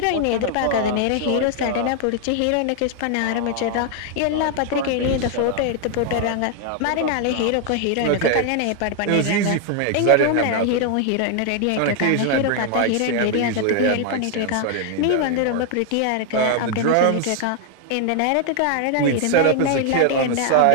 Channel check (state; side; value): different; both; correlation 0.00